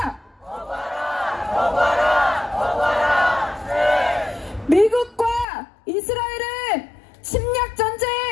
거부하라! 네. 미국과 이스라엘은 침략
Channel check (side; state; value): right; drops out; at 5.5 s